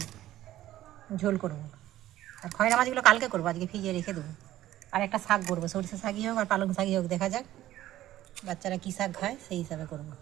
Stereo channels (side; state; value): left; quieter; 14.1 dB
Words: ঝোল করবো। আর খয়রা মাছগুলো কালকে করবো, আজকে ভিজিয়ে রেখে দেবো। আর একটা শাক করবো, সরষে শাকই হোক আর পালং শাকই হোক, দেখা যাক বাচ্চারা কী শাক খায় সেই হিসাবে করবো।